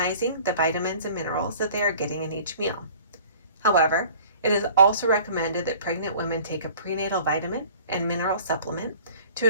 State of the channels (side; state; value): both; inverted; correlation -0.47